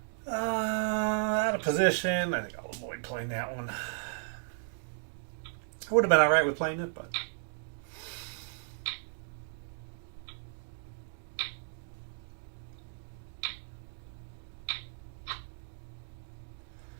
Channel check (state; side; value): silent; left; digital silence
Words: Out of position. I think I'll avoid playing that one. I would have been alright with playing it, but...